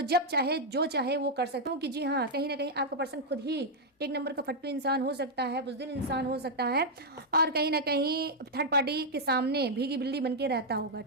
जब चाहे जो चाहे वो कर सकता हूँ कि जी हाँ कहीं ना कहीं आपका पर्सन खुद ही एक नंबर का फट्टू इंसान हो सकता है, बुज़दिल इंसान हो सकता है और कहीं ना कहीं थर्ड पार्टी के सामने भीगी बिल्ली बन के रहता होगा,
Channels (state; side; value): normal; both; correlation -0.02